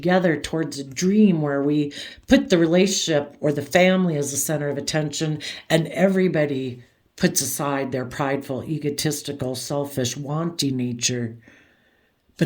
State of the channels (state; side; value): identical; both; correlation 1.00